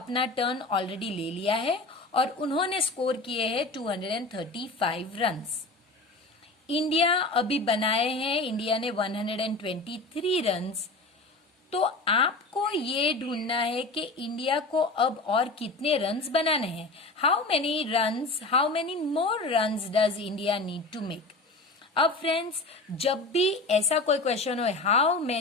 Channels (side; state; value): right; quieter; 3.1 dB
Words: टर्न ऑलरेडी ले लिया है और उन्होंने स्कोर किए हैं 235 रन्स। इंडिया अभी बनाए हैं, इंडिया ने 123 रन्स। तो आपको ये ढूंढना है कि इंडिया को अब और कितने रन्स बनाने हैं। How many more runs does India need to make. अब फ्रेंड्स, जब भी ऐसा कोई क्वेश्चन हो हाउ